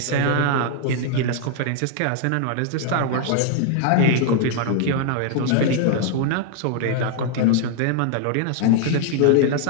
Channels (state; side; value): different; both; correlation 0.00